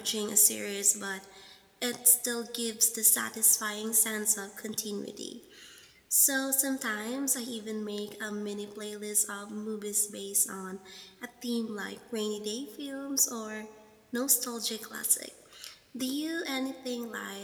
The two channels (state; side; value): identical; both; correlation 1.00